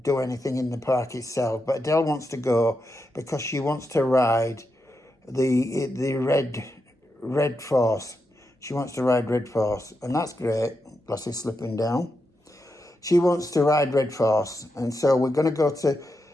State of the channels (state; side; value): normal; both; correlation 0.86